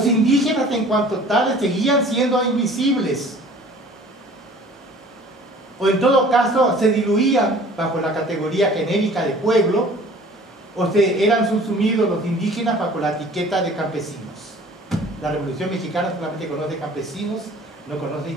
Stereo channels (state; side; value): normal; both; correlation 0.49